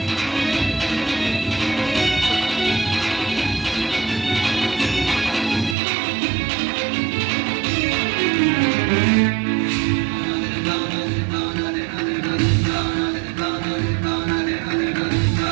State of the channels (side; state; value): left; drops out; at 5.8 s